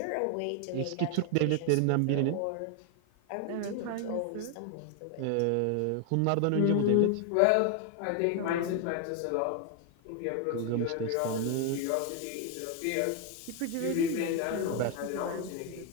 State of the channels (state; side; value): different; both; correlation 0.01